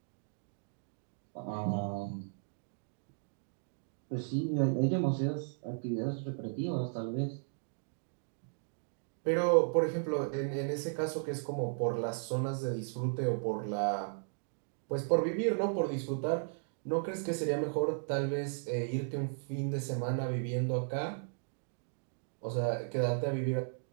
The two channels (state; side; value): silent; left; digital silence